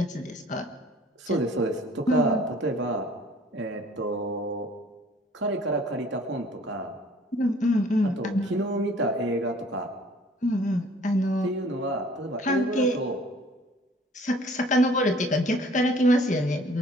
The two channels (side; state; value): both; normal; correlation 0.54